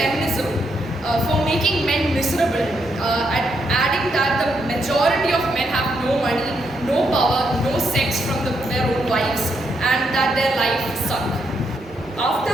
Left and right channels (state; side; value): noise; left; rumble, 30 dB below the sound